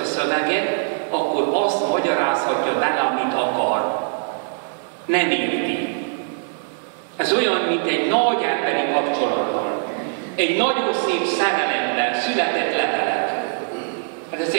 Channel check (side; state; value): left; silent; digital silence